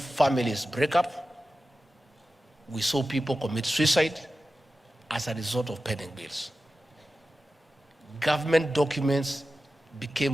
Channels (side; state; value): both; normal; correlation 0.94